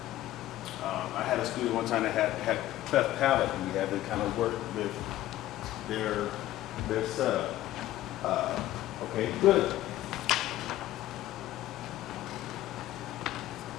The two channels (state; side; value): quieter; right; 14.6 dB